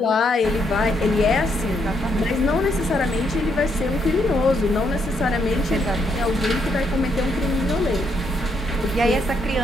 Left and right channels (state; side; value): normal; both; correlation 0.75